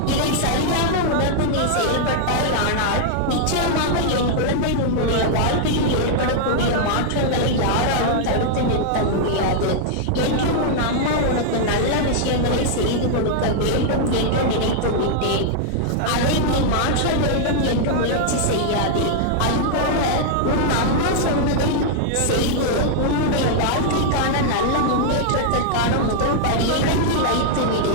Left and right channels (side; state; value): both; different; correlation -0.01